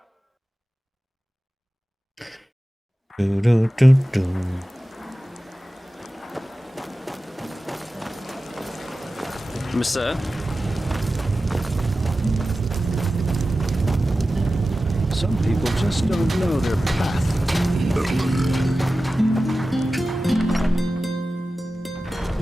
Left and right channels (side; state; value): both; normal; correlation 0.94